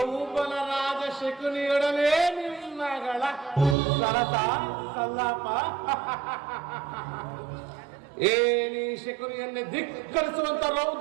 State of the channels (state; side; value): drops out; left; at 3.8 s